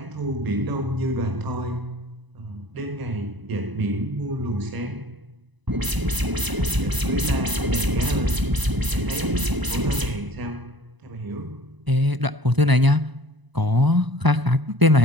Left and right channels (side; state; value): left; late; 1.0 ms